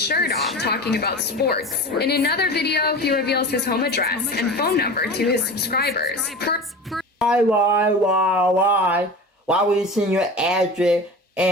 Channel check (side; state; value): both; normal; correlation 0.33